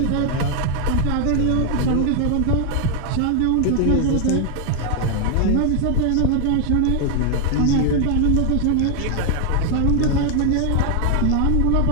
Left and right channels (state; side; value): different; both; correlation 0.00